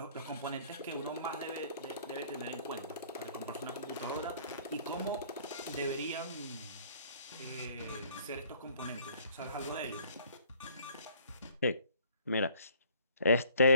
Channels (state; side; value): inverted; both; correlation -0.57